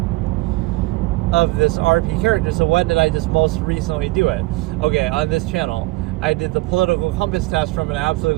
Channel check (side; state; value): left; quieter; 20.9 dB